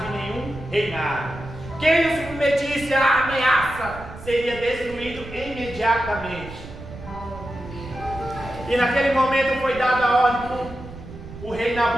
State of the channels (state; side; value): noise; right; rumble, 14 dB below the sound